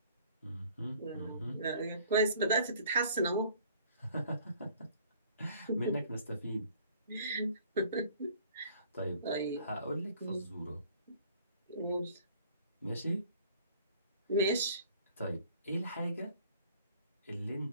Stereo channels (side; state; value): both; inverted; correlation -0.54